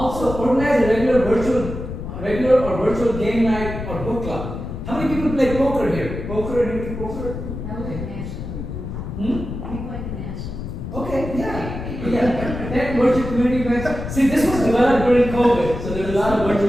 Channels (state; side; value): noise; left; rumble, 7 dB below the sound